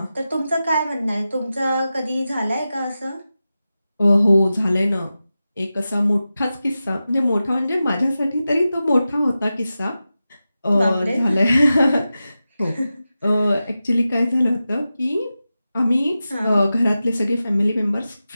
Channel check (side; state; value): both; inverted; correlation -0.93